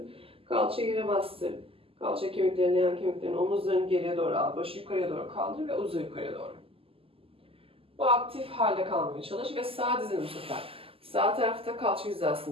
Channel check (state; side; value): late; left; 0.27 ms